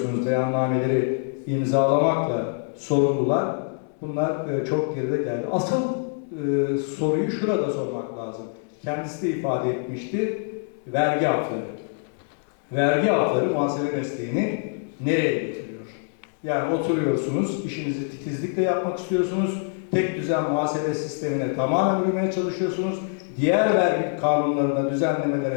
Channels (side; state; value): right; silent; 62 dB below the other